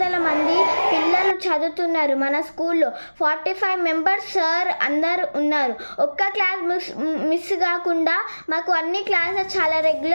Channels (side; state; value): both; inverted; correlation -1.00